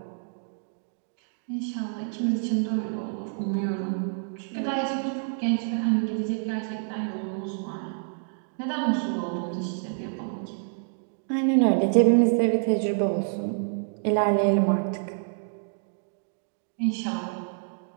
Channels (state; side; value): silent; left; digital silence